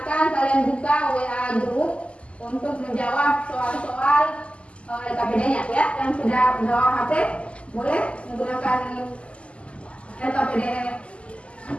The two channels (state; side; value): late; right; 0.057 ms